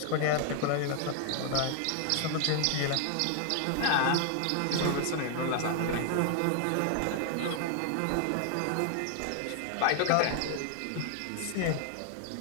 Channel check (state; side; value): different; both; correlation 0.00